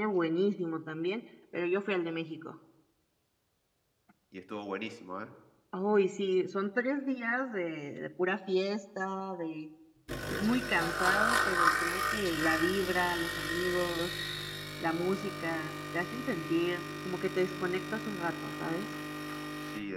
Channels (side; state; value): both; identical; correlation 1.00